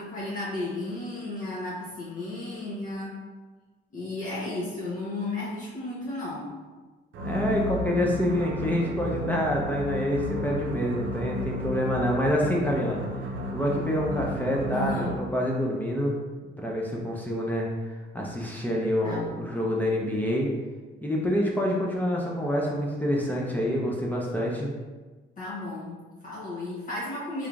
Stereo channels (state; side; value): normal; both; correlation 0.63